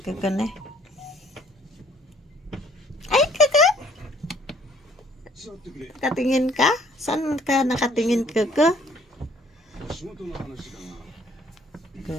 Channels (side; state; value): both; normal; correlation 0.60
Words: Kuku na. Hi, Kuku. Nakatingin ka? Saan ka nakatingin, Kuku?